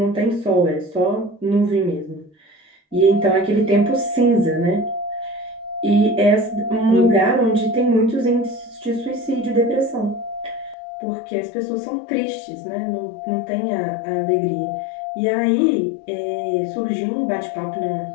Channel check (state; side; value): drops out; right; at 10.8 s